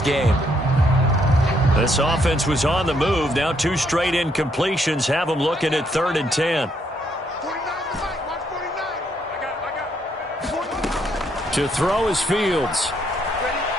game. This offense was on the move. Now 2 straight incompletions have him looking at 3rd and 10. To throw is Fields.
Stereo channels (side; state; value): both; normal; correlation 0.72